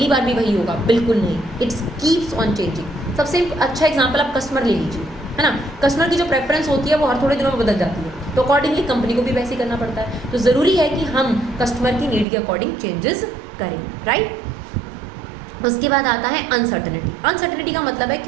बार भी वही होगा, बिल्कुल नहीं, इट्स कीप्स ऑन चेंजिंग। सबसे अच्छा एग्जांपल आप कस्टमर ले लीजिए, है ना। कस्टमर की जो प्रेफरेंस होती है वो हर थोड़े दिनों में बदल जाती है, तो अकॉर्डिंगली कंपनी को भी वैसे ही करना पड़ता है। तो ज़रूरी है कि हम कस्टमर की नीड के अकॉर्डिंग चेंजेस करें, राइट। उसके बाद आता है अनसर्टेनिटी। अनसर्टेनिटी का मतलब है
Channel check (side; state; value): left; drops out; at 12.2 s